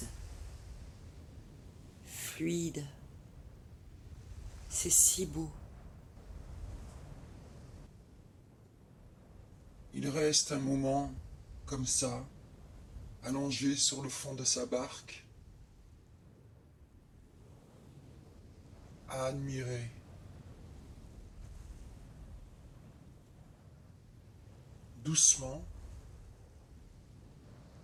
fluide. C'est si beau. Il reste un moment, comme ça, allongé sur le fond de sa barque, à admirer. Doucement,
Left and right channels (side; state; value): both; identical; correlation 1.00